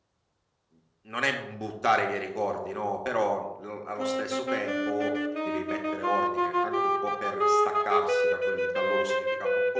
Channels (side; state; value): both; identical; correlation 1.00